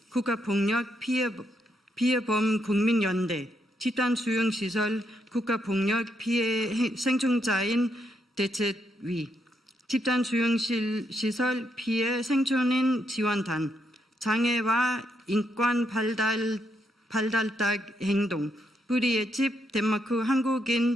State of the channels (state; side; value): normal; both; correlation 0.78